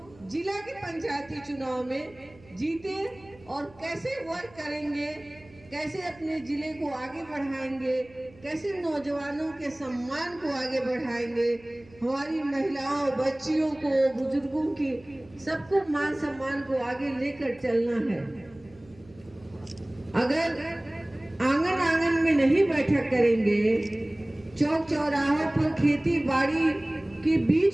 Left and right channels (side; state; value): right; noise; hum, 25 dB below the sound